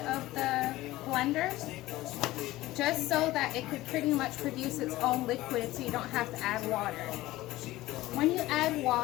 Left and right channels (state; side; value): quieter; right; 17.3 dB